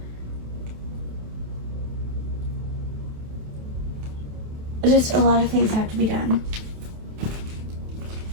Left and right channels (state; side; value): late; left; 27 ms